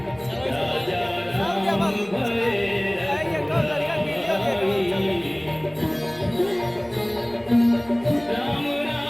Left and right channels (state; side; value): noise; left; rumble, 26 dB below the sound